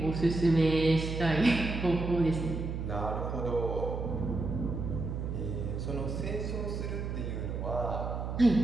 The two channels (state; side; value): noise; right; hum, 4 dB below the sound